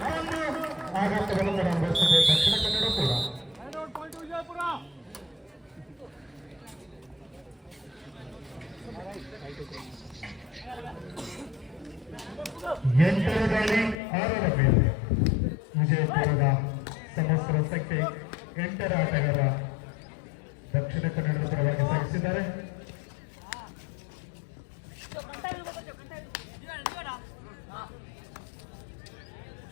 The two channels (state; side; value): drops out; right; at 14.0 s